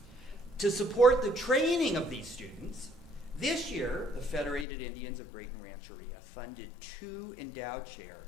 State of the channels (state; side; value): drops out; right; at 4.7 s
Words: To support the training of these students, this year, the Federated Indians of Graton Rancheria funded 2 endowed